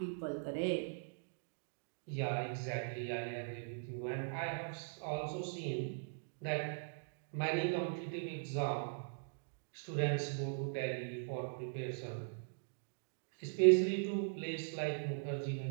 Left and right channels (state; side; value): silent; left; digital silence